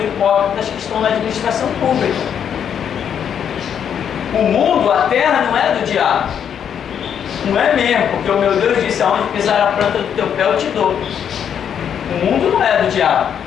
hipócritas que estão na administração pública. O mundo, a terra, não é do diabo. Não é mesmo, porque o meu Deus disse, aonde pisar a planta do teu pé eu te dou. O mundo não é do diabo,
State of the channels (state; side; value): quieter; right; 8.4 dB